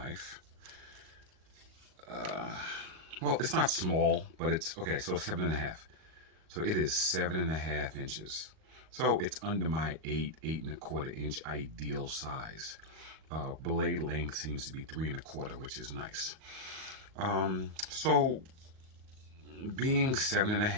well, it's not small, but it's okay. So 7.5. So it is 7.5 inches. So it's under my 8.25 inch ideal size. Blade length seems to be 3.25, which is nice. So being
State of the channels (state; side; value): late; left; 38 ms